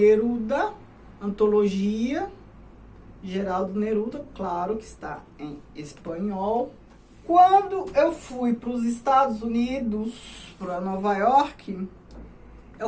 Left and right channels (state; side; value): identical; both; correlation 1.00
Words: Antologia, Geraldo Neruda, claro que está em espanhol. Quando eu fui para os Estados Unidos, para Nova York,